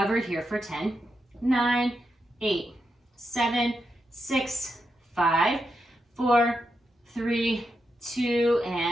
here for 10, 9, 8, 7, 6, 5, 4, 3, 2,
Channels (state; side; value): normal; both; correlation 0.85